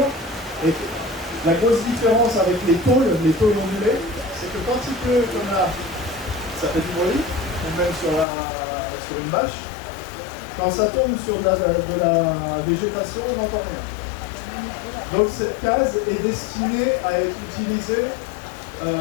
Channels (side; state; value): right; drops out; at 8.2 s